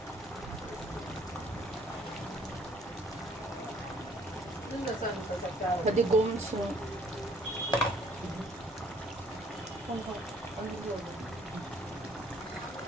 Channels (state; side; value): normal; both; correlation 0.60